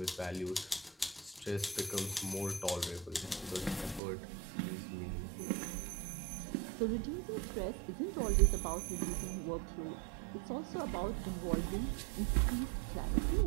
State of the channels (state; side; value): drops out; left; at 4.0 s